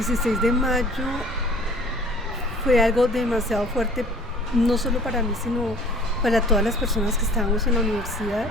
de mayo fue algo demasiado fuerte, no solo para mí, sino para todas las personas que estábamos en la universidad.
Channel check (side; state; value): both; normal; correlation 0.50